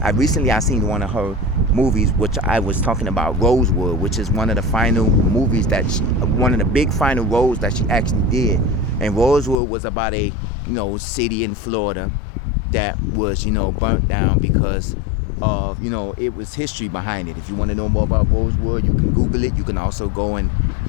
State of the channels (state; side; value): drops out; right; at 9.6 s